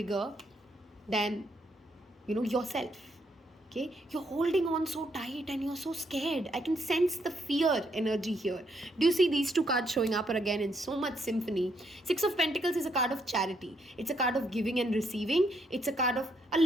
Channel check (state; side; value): normal; both; correlation 0.75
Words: than yourself. Okay, you're holding on so tight and you're so scared. I can sense the fear energy here. Do you see these two cards showing up again in so much symphony? 6 of Pentacles is a card of charity. It's a card of giving and receiving. It's a card of a